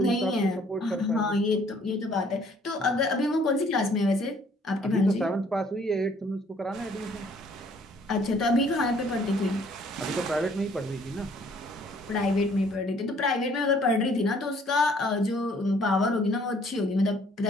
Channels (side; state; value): both; normal; correlation 0.60